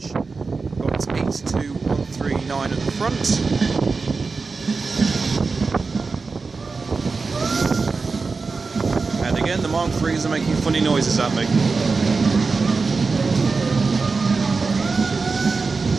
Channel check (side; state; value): left; quieter; 4.3 dB